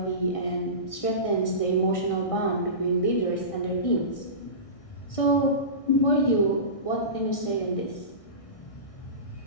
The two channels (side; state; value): right; late; 1.6 ms